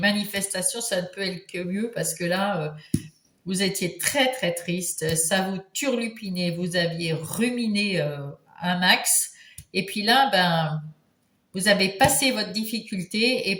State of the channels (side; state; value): both; identical; correlation 1.00